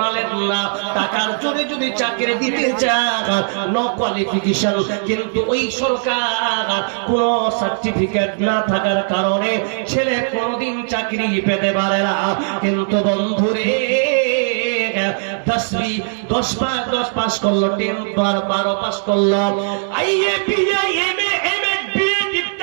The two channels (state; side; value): silent; left; digital silence